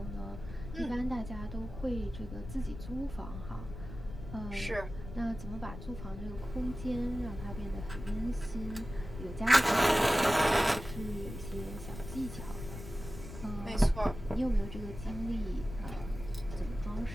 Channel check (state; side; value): noise; left; rumble, 10 dB below the sound